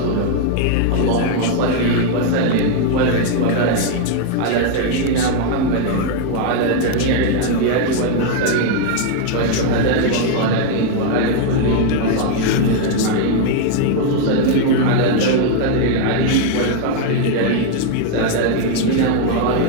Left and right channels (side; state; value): both; different; correlation 0.00